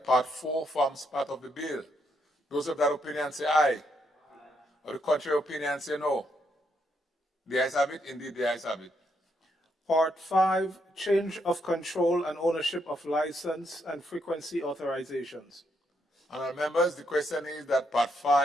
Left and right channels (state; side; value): normal; both; correlation 0.77